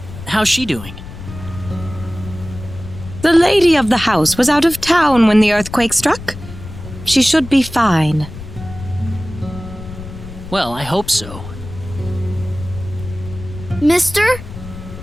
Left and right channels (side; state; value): left; noise; rumble, 13 dB below the sound